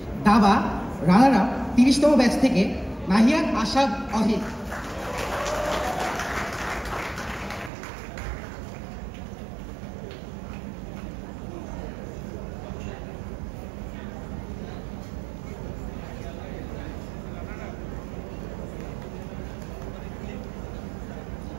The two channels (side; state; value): left; drops out; at 7.7 s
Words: দাবা runner up 30তম batch থেকে নাহিয়ান আশাদ অহিদ।